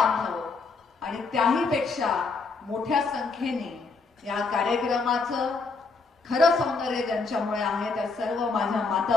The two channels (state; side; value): quieter; right; 4.2 dB